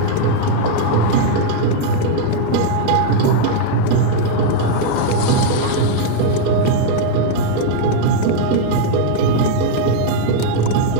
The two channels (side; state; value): both; different; correlation -0.01